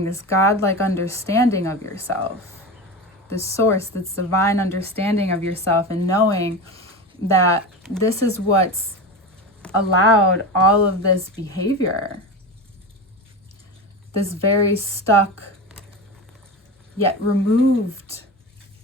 this godlike understanding of yourself, this source, this divine understanding of yourself, and knowing that this is what's allowed all of this behavior, this very stuck yet removed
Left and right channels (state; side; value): normal; both; correlation 0.24